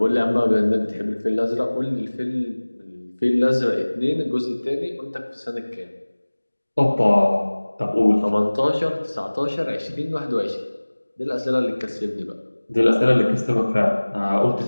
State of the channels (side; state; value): both; inverted; correlation -1.00